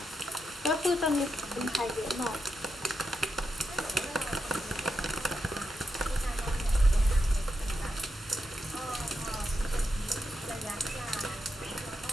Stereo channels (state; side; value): normal; both; correlation 0.85